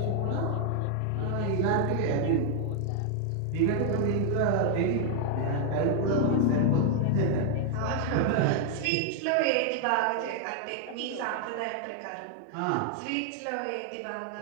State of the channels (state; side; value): different; both; correlation 0.00